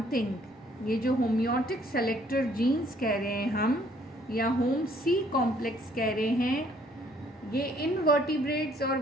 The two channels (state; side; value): normal; both; correlation 0.63